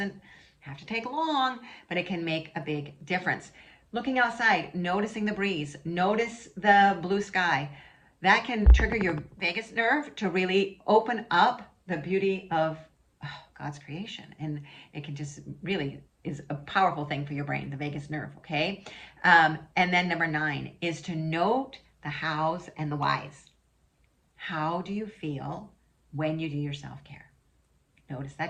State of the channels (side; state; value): both; identical; correlation 1.00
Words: have to take long, but it can make a big difference. Looking outside, noticing the breeze, notice the blue sky. That can trigger your vagus nerve to really open up the beauty of God's creation. And it can just really is a powerful thing for your brain, the vagus nerve, okay? And then number 9 is to note the hows and the whys. How do you feel when you do your self-care? Notice